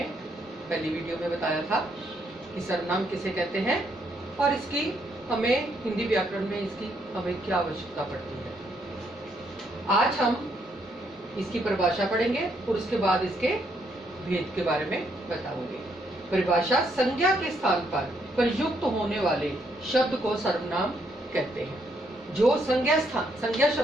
पहली वीडियो में बताया था कि सर्वनाम किसे कहते हैं और इसकी हमें हिंदी व्याकरण में इसकी हमें क्या आवश्यकता पड़ती है। आज हम इसकी परिभाषा पढ़ेंगे और उसके बाद इसके भेद के बारे में बताऊंगे। परिभाषा: संज्ञा के स्थान पर प्रयुक्त होने वाले शब्द को सर्वनाम कहते हैं। जो संज्ञा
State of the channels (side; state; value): both; normal; correlation 0.73